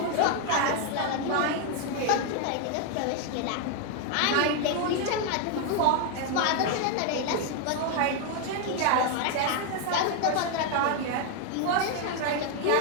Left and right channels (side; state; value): both; different; correlation 0.01